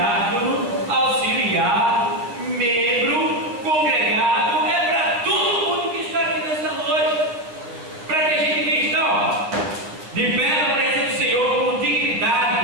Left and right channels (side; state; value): left; late; 9.6 ms